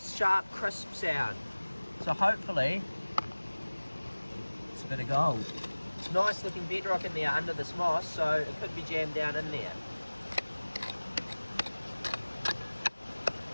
sharp, crisp sound. So hopefully it's a bit of gold. It's nice looking bedrock in there under this moss, so it could be jammed down in there.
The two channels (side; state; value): both; inverted; correlation -1.00